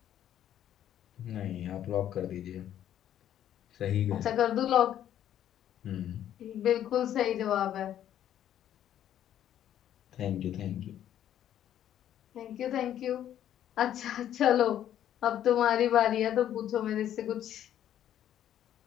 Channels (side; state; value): right; quieter; 11.0 dB